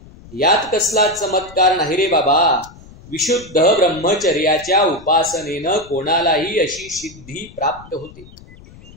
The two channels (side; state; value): left; noise; rumble, 21 dB below the sound